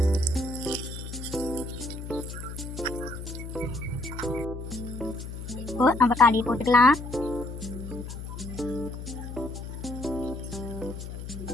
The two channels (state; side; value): noise; left; hum, 9 dB below the sound